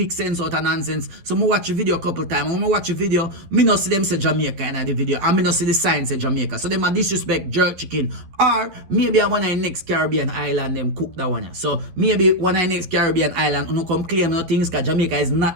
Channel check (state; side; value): late; left; 11 ms